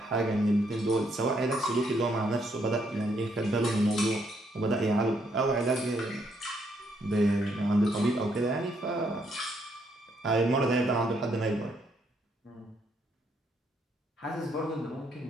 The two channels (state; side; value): normal; both; correlation 0.73